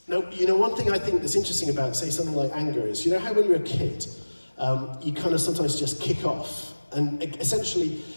Now, you know, one thing I think that's interesting about, say, something like anger is, you know how when you're a kid, you kind of sometimes just kick off. And essentially,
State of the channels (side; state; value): both; inverted; correlation -1.00